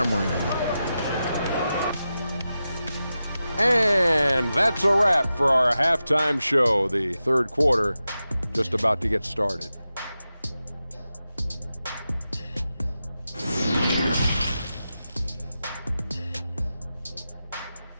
them. And that's a wrap for our halftime show. The third quarter just about to get started.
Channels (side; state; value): both; inverted; correlation -0.91